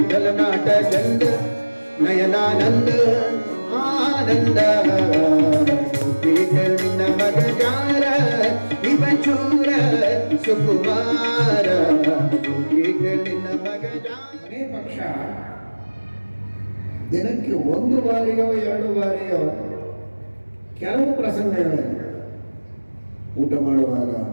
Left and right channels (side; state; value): both; inverted; correlation -1.00